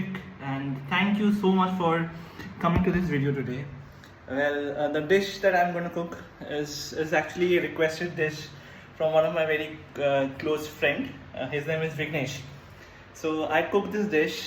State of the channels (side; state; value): both; identical; correlation 1.00